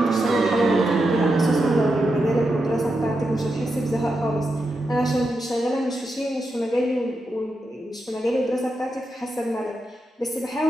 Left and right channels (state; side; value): normal; both; correlation 0.86